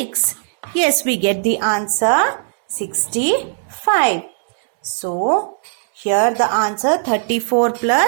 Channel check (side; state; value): left; silent; digital silence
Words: Yes, we get the answer 65. So, here the answer 34